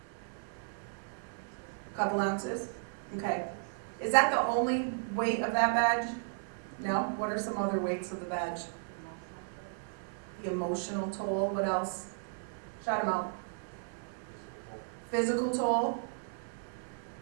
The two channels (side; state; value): left; silent; 55 dB below the other